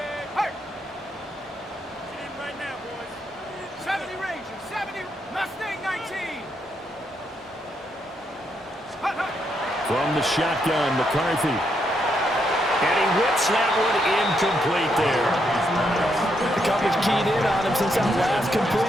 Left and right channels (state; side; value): normal; both; correlation 0.78